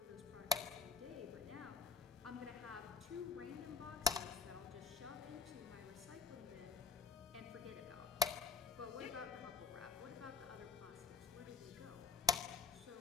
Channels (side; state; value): right; quieter; 4.6 dB